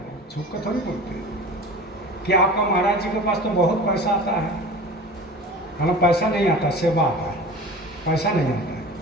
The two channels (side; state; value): both; normal; correlation 0.37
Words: छुप कर थोड़ी बोलते हैं कि आपका महाराज जी के पास तो बहुत पैसा आता है। हमें पैसा नहीं आता, सेवा आता है, पैसा नहीं आता है।